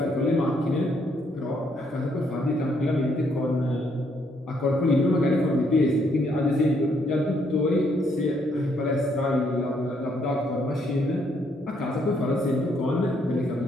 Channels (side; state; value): both; normal; correlation 0.71